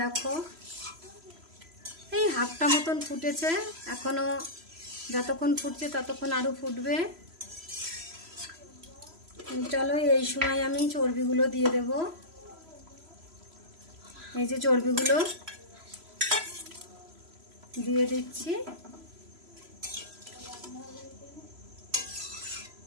এই হাফটা মতন ফুটেছে, এখনো যতক্ষণ ফুটছে ততক্ষণ আরো ফুটবে। চলো এই সময় আমি চর্বিগুলো দিয়ে দেব। এই যে চর্বিগুলো দিয়ে দিচ্ছি।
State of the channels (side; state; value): left; late; 3.0 ms